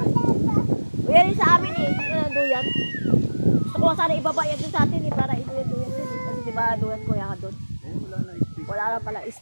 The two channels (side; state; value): both; inverted; correlation -1.00